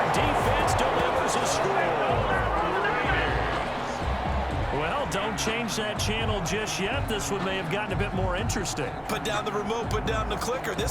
defense delivers a score. Well, don't change that channel just yet. This one may have gotten a bit more interesting. Put down the remote, put down the clicker.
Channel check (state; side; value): identical; both; correlation 1.00